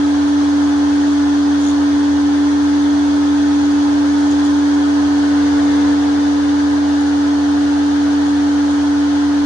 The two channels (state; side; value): late; left; 11 ms